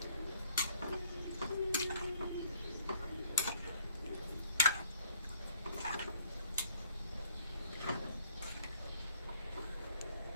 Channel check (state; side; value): inverted; both; correlation -0.61